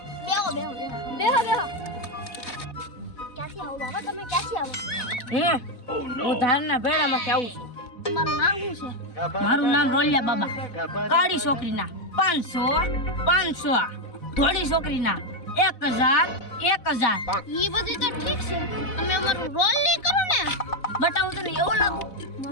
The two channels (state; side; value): late; right; 4.0 ms